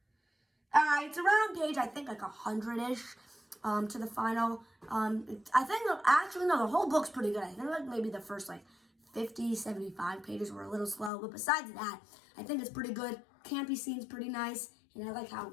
It's around page I think like 100-ish to the final. I think actually no, the whole book's pretty good. I think like maybe the first like 50, 75 pages were a little slow, but besides that, I think it's pretty good. Campy scene's pretty nice. And I like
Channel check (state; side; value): drops out; right; at 11.1 s